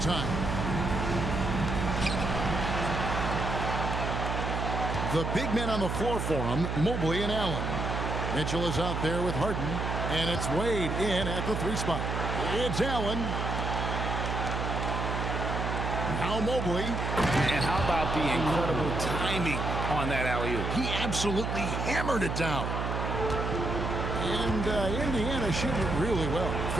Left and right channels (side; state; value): right; noise; hum, 2 dB below the sound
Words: The big men on the floor for him, Mobley and Allen. Mitchell is out there with Harden, and it's Wade in at the 3 spot. It's Allen. Now Mobley. And how about the incredible timing on that alley-oop? He absolutely hammered it down. And Indiana shooting really well.